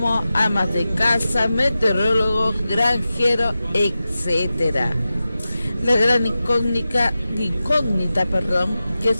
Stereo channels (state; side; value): inverted; both; correlation -0.93